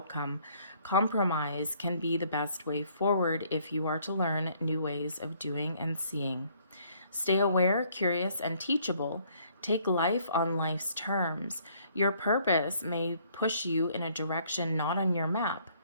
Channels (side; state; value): both; inverted; correlation -0.63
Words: Compromise can be the best way forward if you are to learn new ways of doing and seeing. Stay aware, curious, and teachable. Take life on life's terms. Your purpose may push you in a direction not on your map.